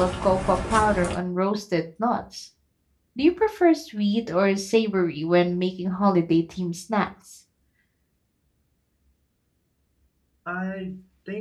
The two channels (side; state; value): both; identical; correlation 1.00